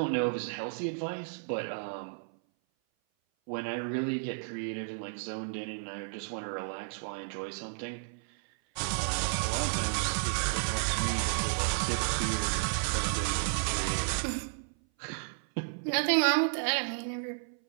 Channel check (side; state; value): left; silent; 56 dB below the other